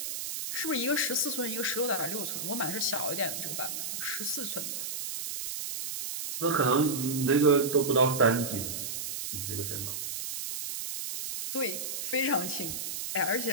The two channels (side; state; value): right; noise; hiss, 5 dB below the sound